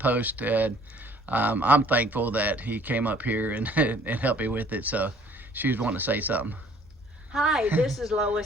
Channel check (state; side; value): normal; both; correlation 0.57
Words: and I'm thankful that he came up here and, and helped me with it. So she was wanting to say something. Hi, this is